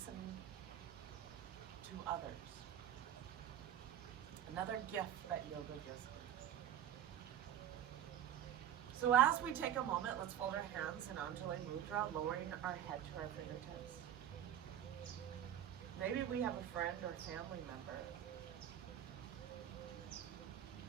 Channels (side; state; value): left; quieter; 10.5 dB